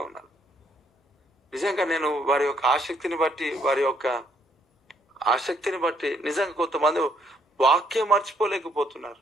ఉన్నారు. నిజంగా నేను వారి యొక్క ఆసక్తిని బట్టి నిజంగా కొంతమంది వాక్యం మర్చిపోలేకపోతున్నారు.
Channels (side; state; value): both; normal; correlation 0.69